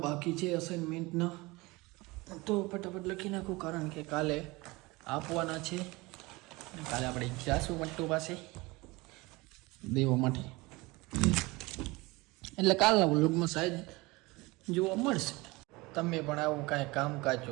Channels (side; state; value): left; quieter; 23.0 dB